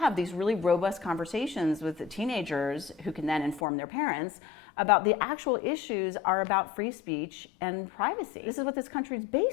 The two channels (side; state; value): right; drops out; at 3.6 s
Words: these really robust conversations with the teenagers who can then inform their parents about the actual issues are about free speech and privacy. This is what this country is